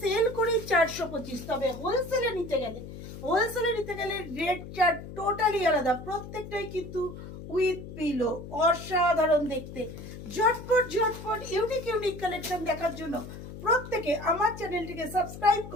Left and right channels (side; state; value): left; noise; hum, 12 dB below the sound